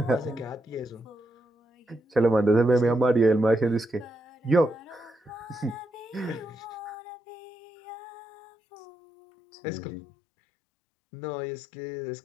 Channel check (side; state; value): right; drops out; at 7.0 s